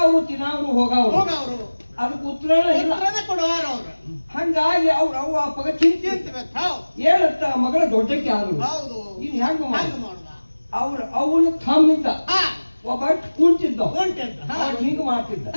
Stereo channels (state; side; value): inverted; both; correlation -1.00